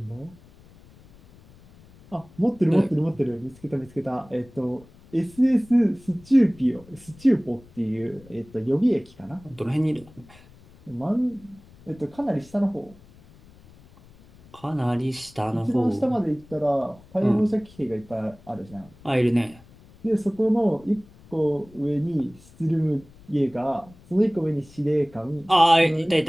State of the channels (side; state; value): left; noise; rumble, 24 dB below the sound